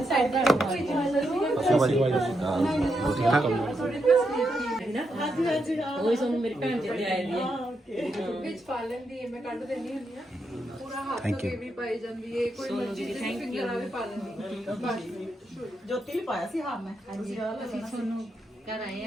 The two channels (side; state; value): both; normal; correlation 0.83